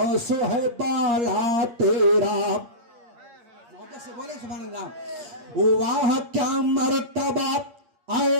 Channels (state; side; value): late; left; 8.5 ms